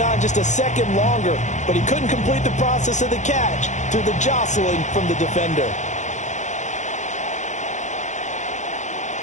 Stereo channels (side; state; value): right; late; 0.35 ms